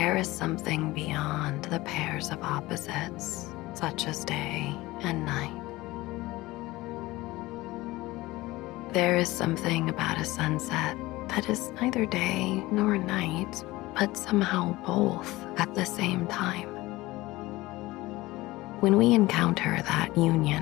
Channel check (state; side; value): quieter; right; 19.3 dB